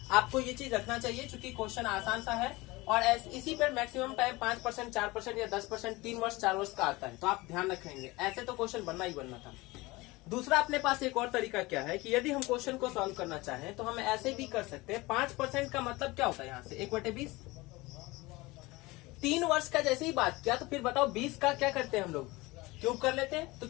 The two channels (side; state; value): right; quieter; 21.8 dB